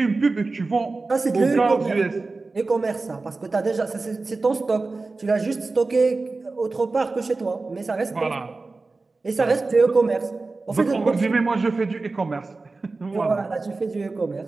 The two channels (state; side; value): quieter; left; 3.7 dB